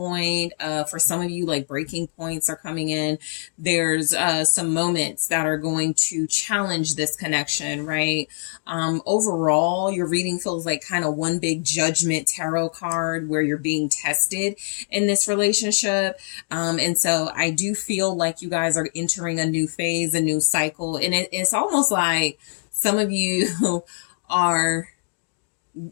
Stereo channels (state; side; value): silent; right; 57 dB below the other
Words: For some of you, like breaking points are coming in. There's some moments that are going to challenge this connection, right? Overall, your reading feels like kind of one big judgment tarot card where you're being tested in this relationship. And so I do feel like you guys are entering a new phase, a new cycle. And it's almost like some of you are